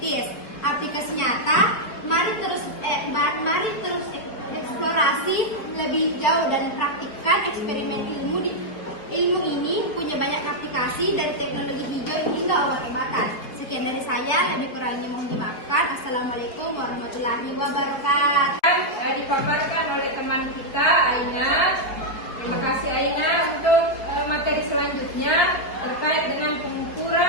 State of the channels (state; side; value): late; right; 4.8 ms